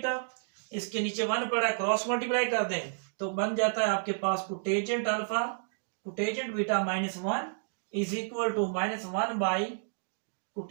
इसके नीचे 1 पड़ा है, क्रॉस मल्टीप्लाई कर दें तो बन जाता है आपके पास cotangent alpha cotangent beta -1 is equal to -1 by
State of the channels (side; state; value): left; silent; digital silence